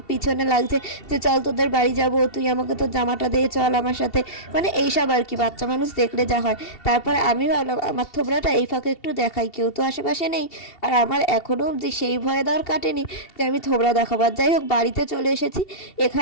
পিছনে লাগছে যে চল তোদের বাড়ি যাবো, তুই আমাকে তোর জামাটা দিয়ে চল আমার সাথে, মানে এইসব আর কি, বাচ্চা মানুষ দেখলে যা হয়। তারপরে আমি ভাবলাম আমার থোবড়াটা এই ফাঁকে একটু দেখাই, কেউ তো আশেপাশে নেই, আর আমার এখনও অবধি সেই ভয় দেওয়ার কাটেনি যে আমি থোবড়া দেখাবার। যাই হোক, বাড়িতে চলে এসেছি।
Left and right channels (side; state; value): right; late; 2.7 ms